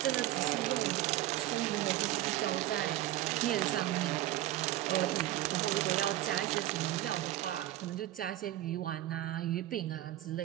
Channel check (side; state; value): left; quieter; 14.3 dB